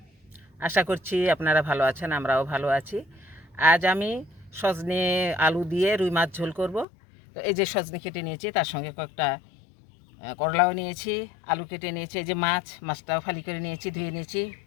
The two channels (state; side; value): drops out; right; at 6.9 s